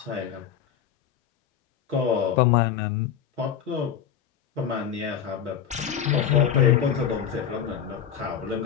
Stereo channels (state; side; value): quieter; right; 8.6 dB